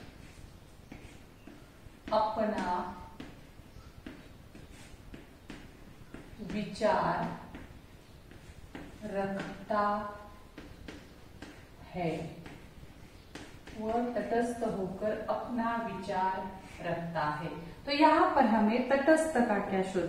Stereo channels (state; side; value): identical; both; correlation 1.00